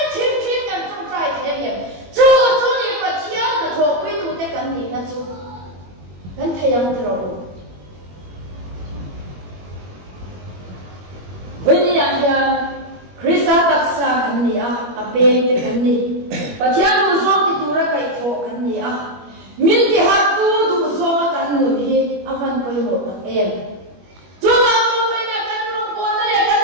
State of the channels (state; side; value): late; left; 21 ms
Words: yang tro Veni ya Krista taksa kan ni ape te kan ni pathian du so ti tura kai tho kan ni min ti ha tu du so kan nu hi avan poi ho ta em tu ma tu mai na kan ro ko na le kan